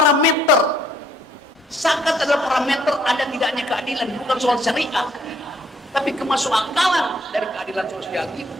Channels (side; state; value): both; normal; correlation 0.65